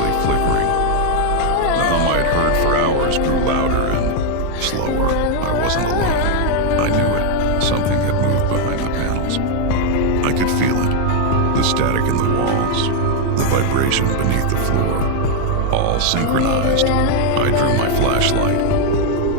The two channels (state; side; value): different; both; correlation 0.01